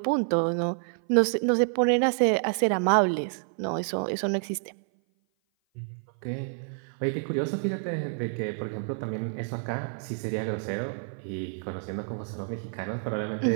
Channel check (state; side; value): silent; left; 56 dB below the other